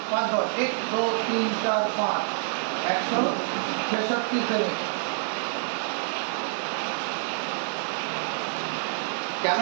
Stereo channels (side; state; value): left; silent; 60 dB below the other